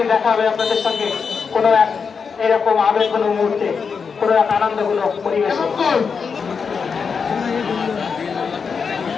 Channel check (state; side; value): quieter; right; 5.7 dB